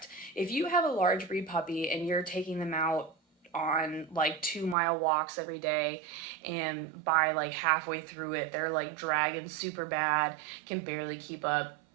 If you have a large breed puppy and you're taking them out on like 2 mile walks every day, and by like halfway through it they're like dragging super bad, can barely keep up,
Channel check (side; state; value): left; drops out; at 4.8 s